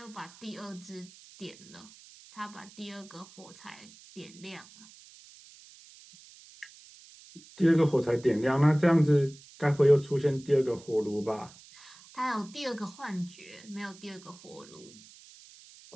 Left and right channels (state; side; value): noise; right; hiss, 22 dB below the sound